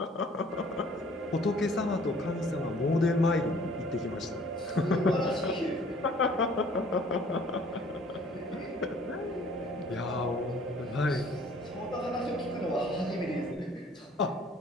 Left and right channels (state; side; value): normal; both; correlation 0.55